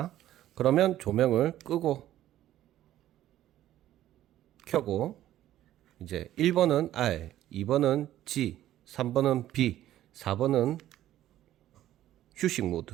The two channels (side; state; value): left; quieter; 13.1 dB